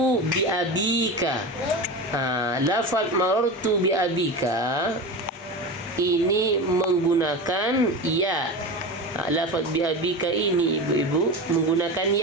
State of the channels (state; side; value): normal; both; correlation 0.26